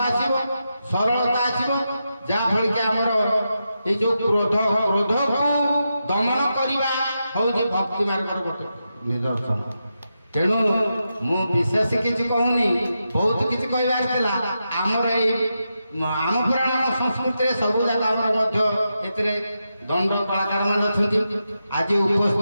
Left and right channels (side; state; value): both; inverted; correlation -0.87